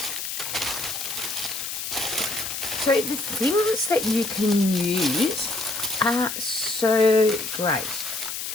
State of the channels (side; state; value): left; noise; hiss, 5 dB below the sound